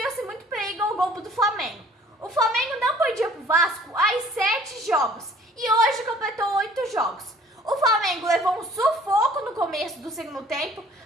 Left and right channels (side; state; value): both; normal; correlation 0.53